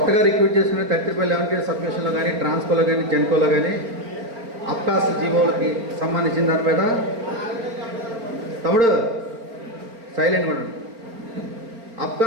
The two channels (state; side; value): late; left; 4.4 ms